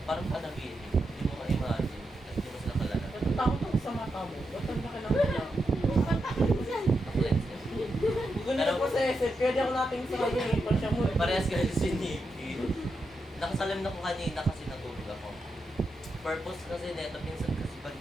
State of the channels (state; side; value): normal; both; correlation 0.86